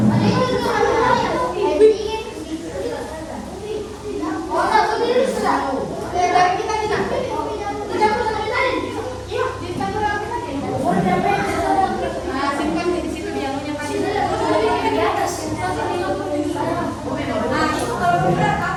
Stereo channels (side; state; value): both; identical; correlation 1.00